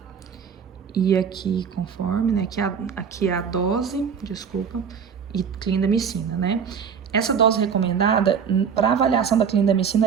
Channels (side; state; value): left; quieter; 6.9 dB